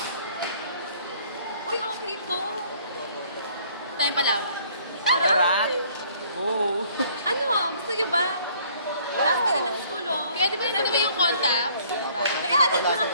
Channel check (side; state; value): both; inverted; correlation -0.59